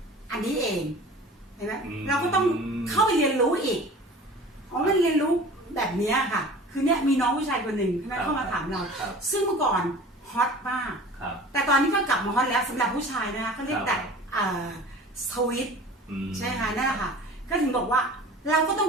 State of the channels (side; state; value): both; normal; correlation 0.41